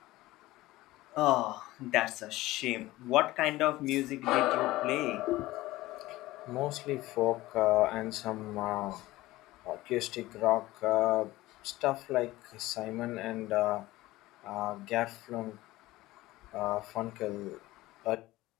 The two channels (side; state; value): right; quieter; 17.9 dB